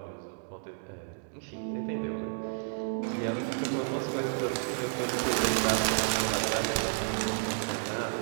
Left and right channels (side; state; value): left; silent; digital silence